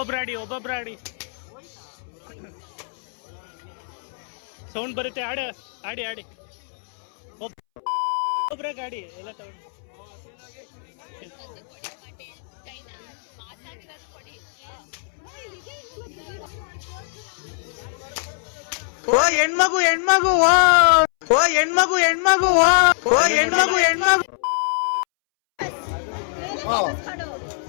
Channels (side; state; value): right; silent; 63 dB below the other